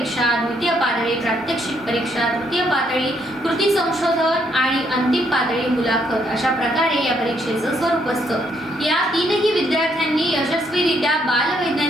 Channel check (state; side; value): normal; both; correlation 0.72